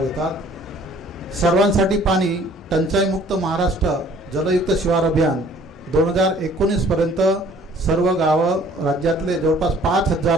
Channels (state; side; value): normal; both; correlation 0.55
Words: घेतात। सर्वांसाठी पाणी टंचाईमुक्त महाराष्ट्र जलयुक्त शिवार अभियान 2019 पर्यंत सर्व गावं राज्यातले जवळपास